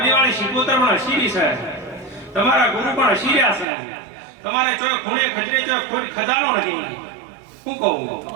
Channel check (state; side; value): drops out; left; at 3.7 s